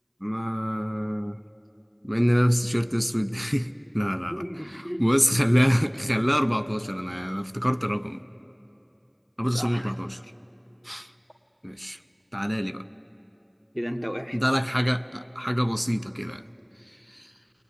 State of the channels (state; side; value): identical; both; correlation 1.00